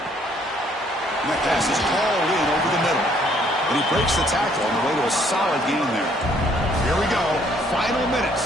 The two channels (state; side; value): normal; both; correlation 0.64